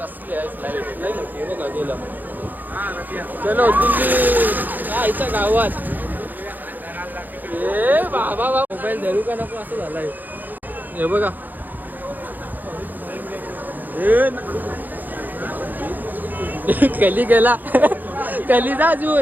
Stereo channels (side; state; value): left; late; 0.085 ms